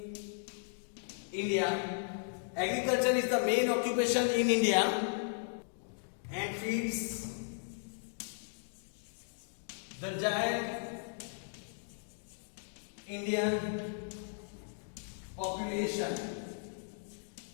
India. Agriculture is the main occupation in India and feeds the giant Indian population.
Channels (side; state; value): right; silent; digital silence